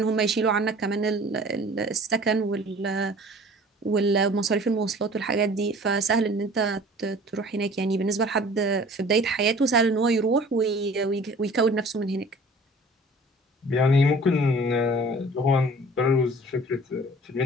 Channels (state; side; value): normal; both; correlation 0.47